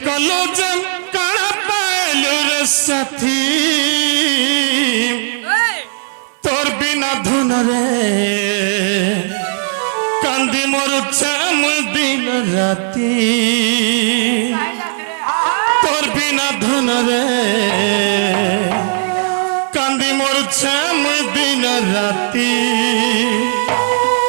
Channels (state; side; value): silent; left; digital silence